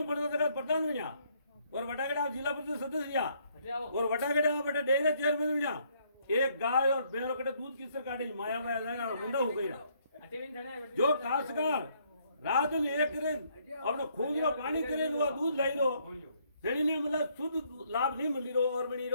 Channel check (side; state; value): both; inverted; correlation -0.68